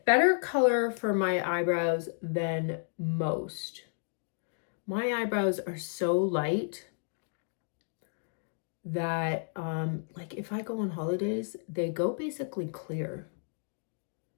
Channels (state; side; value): silent; right; digital silence